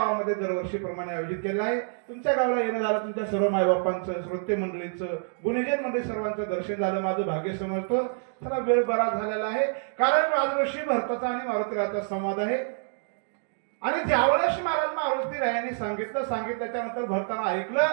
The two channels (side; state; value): left; silent; digital silence